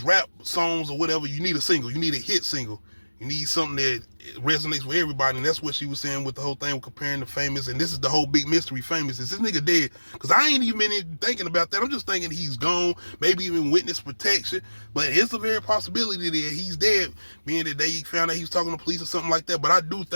rap songs or whatever. You need a single, you need a hit single, you need something that resonates with everybody. And that's what she was saying with the whole thing with comparing the Famous. And this is the whole big mystery. Famous, is this nigga dead? Because I ain't even thinking about that. I'm just thinking he's gone, maybe even witness protection. But it's a very possibility that he's dead, being that they found out he was talking to police or something like that. But I do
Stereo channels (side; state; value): both; inverted; correlation -1.00